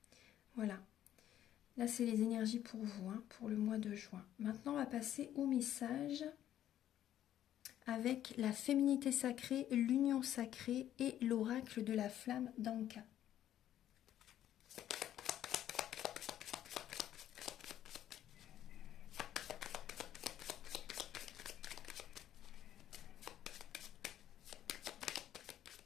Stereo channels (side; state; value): right; quieter; 11.6 dB